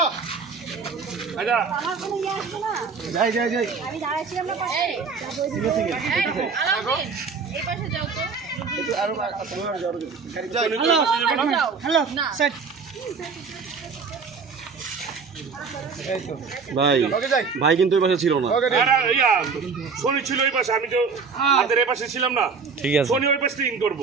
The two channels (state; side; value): quieter; left; 5.2 dB